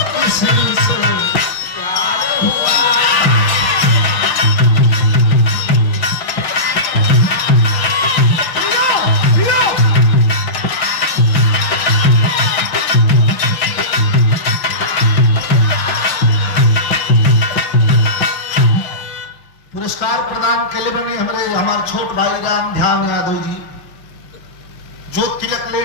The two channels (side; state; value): right; late; 5.9 ms